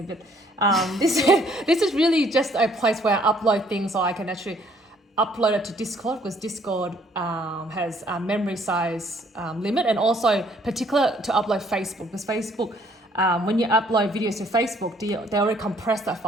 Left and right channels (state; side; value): normal; both; correlation 0.63